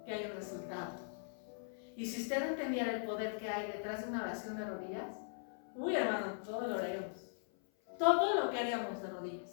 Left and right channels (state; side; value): silent; right; 51 dB below the other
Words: que hay un resultado. Y si usted entendiera el poder que hay detrás de una oración de rodillas, uy, hermano, todo lo haríamos. Todo lo que haríamos de